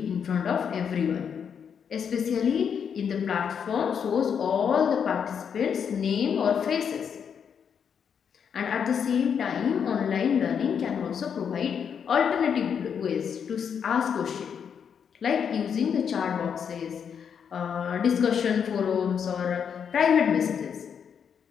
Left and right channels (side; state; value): right; quieter; 7.4 dB